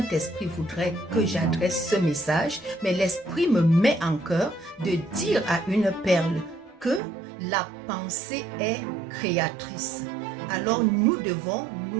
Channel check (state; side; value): drops out; left; at 7.0 s